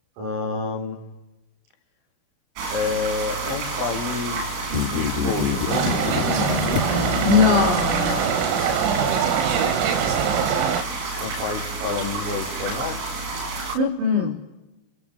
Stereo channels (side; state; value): left; late; 33 ms